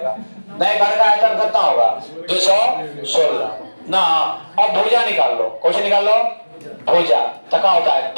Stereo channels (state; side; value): inverted; both; correlation -1.00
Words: नए घन का आयतन कितना होगा? 216 ना। अब भुजा निकाल लो, कौन सी निकाल लो? भुजा। तो क्या होता है?